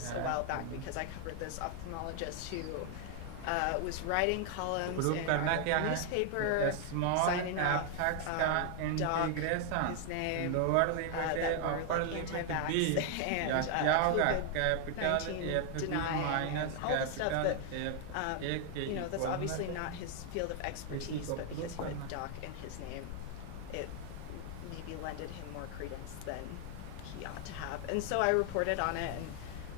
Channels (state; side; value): different; both; correlation 0.00